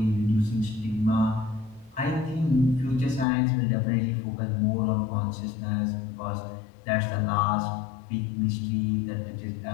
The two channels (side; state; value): right; drops out; at 3.2 s